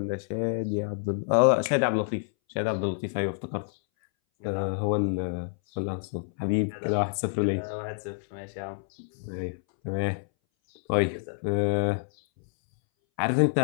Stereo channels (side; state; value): right; silent; 60 dB below the other